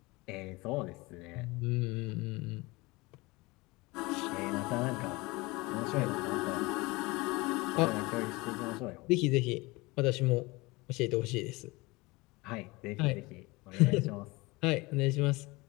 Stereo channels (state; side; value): quieter; right; 23.3 dB